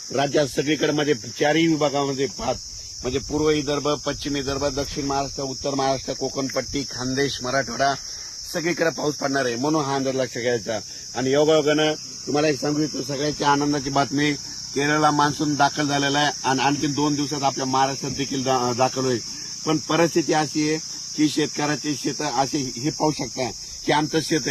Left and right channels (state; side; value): identical; both; correlation 1.00